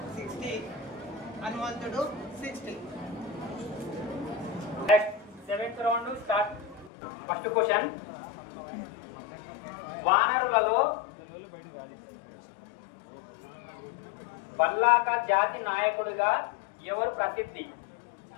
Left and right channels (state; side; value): drops out; right; at 6.9 s